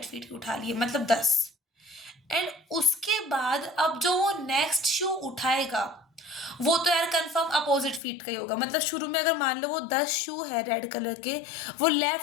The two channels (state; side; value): drops out; right; at 8.0 s